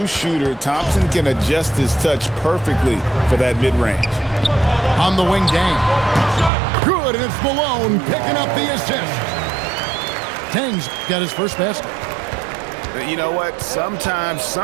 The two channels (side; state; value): left; drops out; at 6.5 s